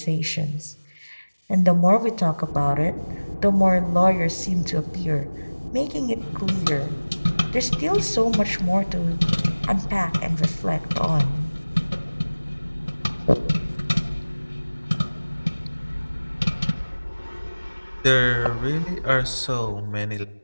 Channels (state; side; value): inverted; both; correlation -1.00